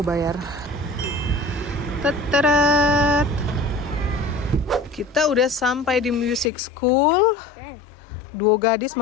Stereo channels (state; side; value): drops out; right; at 6.5 s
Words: Teteret. Kita udah sampai di music school. 2 gadis